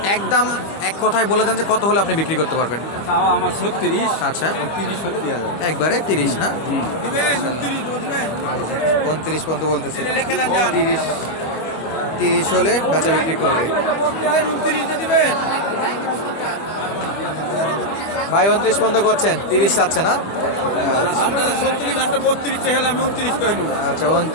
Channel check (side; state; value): right; late; 25 ms